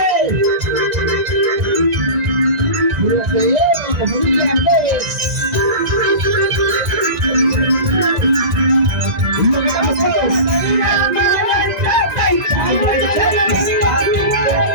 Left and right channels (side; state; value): left; late; 1.9 ms